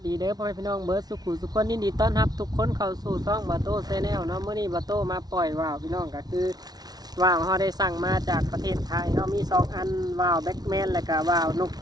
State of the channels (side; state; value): left; late; 0.19 ms